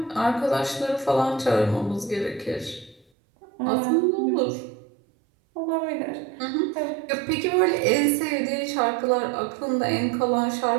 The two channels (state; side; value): drops out; left; at 3.1 s